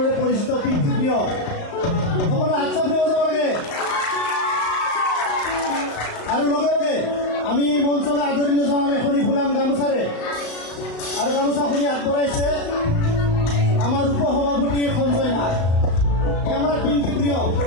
পৰিচিত পিংকি প্ৰিয় সকলো হাত চাপ দিব যাব লাগে। আৰু লগে লগে আমি এই মঞ্চলৈ আদৰণি জনাম এখনি ফুলাম গামোচাৰে। আৰু গামোচাখনি আগবঢ়াইছে আমাৰ উপসভাপতি সঞ্জয় নাথ, আমাৰ পিংকি প্ৰিয়।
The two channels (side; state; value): right; late; 35 ms